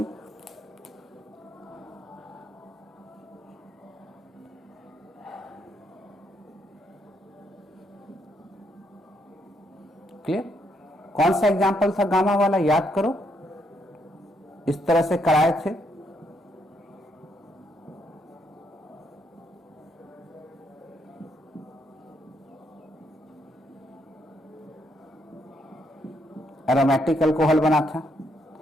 क्लियर? कौन सा एग्जाम्पल था गामा वाला, याद करो। इस तरह से कराए थे। एरोमेटिक अल्कोहल बना था,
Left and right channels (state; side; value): normal; both; correlation 0.75